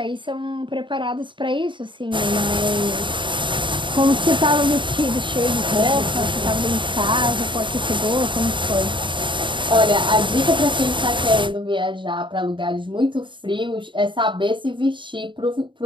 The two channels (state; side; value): late; left; 0.23 ms